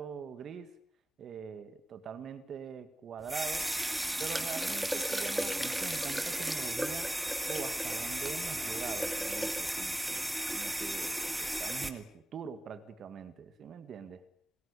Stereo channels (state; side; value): normal; both; correlation 0.95